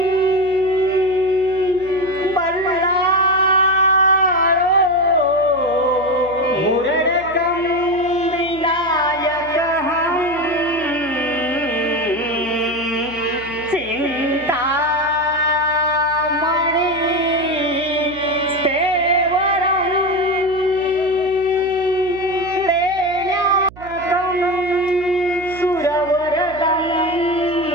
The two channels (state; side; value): noise; right; hum, 19 dB below the sound